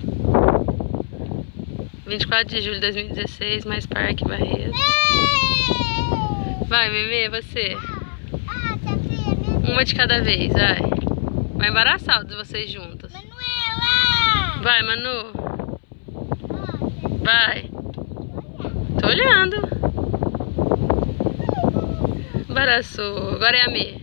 24 de julho de 2016, mais Parque Barretos. Vai, Mimê, você. Uma de cada vez, vai. Vai embaraçar os de vocês juntos. Manuela! Vai, Manu. Vai. Tô olhando. Embaraçou. Agora é a Mê.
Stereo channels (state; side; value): silent; right; 62 dB below the other